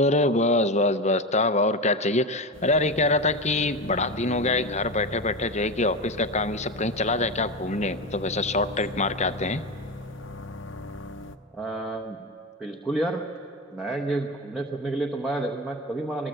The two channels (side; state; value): both; normal; correlation 0.20